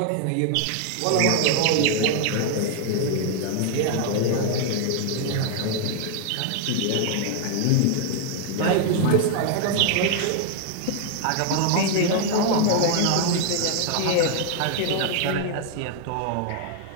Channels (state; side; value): different; both; correlation 0.00